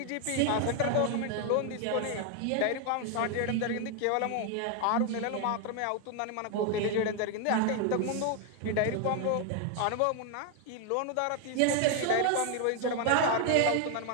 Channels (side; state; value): both; different; correlation 0.01